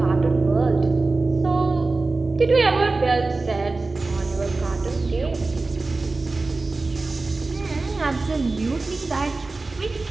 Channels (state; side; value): quieter; left; 3.5 dB